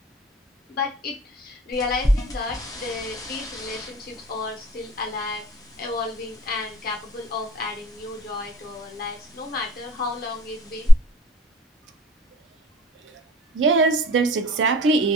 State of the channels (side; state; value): both; normal; correlation 0.50